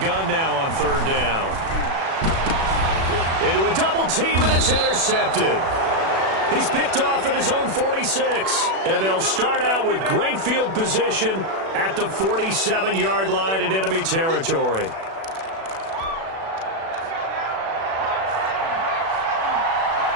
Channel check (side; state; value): left; late; 36 ms